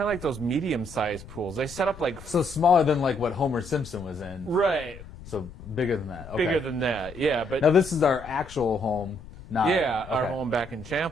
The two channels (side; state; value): left; noise; rumble, 16 dB below the sound